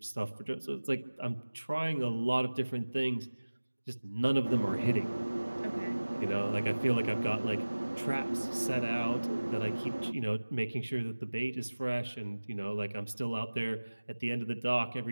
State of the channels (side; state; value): both; inverted; correlation -1.00